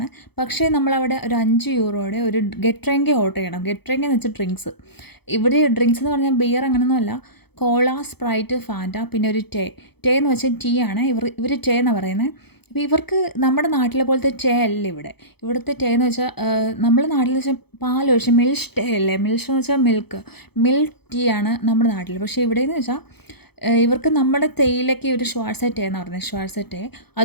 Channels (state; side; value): late; right; 0.97 ms